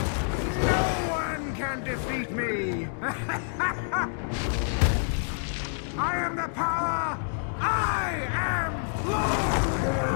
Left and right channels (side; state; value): right; silent; digital silence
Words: No one can defeat me! I am the power! I am Lord!